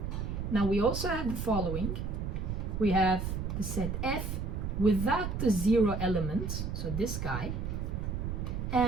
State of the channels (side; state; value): right; noise; rumble, 3 dB below the sound